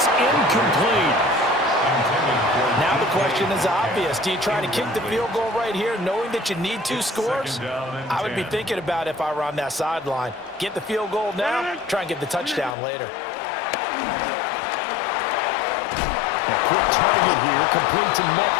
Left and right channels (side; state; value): right; drops out; at 12.8 s